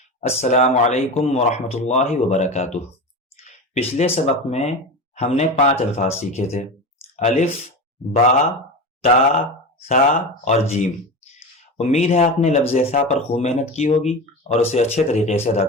السلام علیکم ورحمۃ اللہ وبرکاتہ۔ پچھلے سبق میں ہم نے 5 الفاظ سیکھے تھے: الف، با، تا، سا اور جیم۔ امید ہے آپ نے لفظ سا پر خوب محنت کی ہوگی اور اسے اچھے طریقے سے ادا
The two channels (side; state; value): both; normal; correlation 0.25